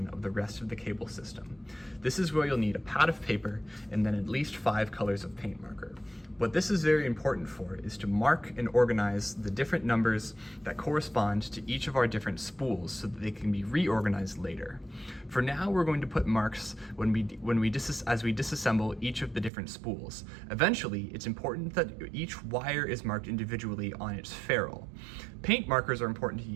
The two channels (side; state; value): left; drops out; at 19.5 s